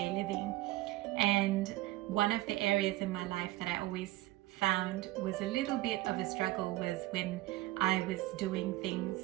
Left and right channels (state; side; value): quieter; left; 17.6 dB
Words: living. And one of the areas in my life that I always found was a little bit of a struggle was when I was doing things